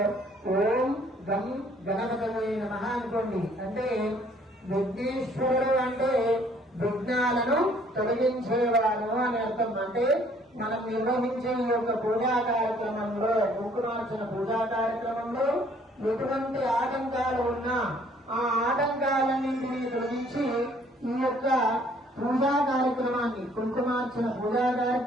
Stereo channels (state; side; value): normal; both; correlation 0.61